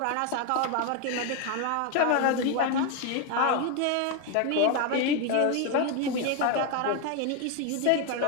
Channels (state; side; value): different; both; correlation 0.01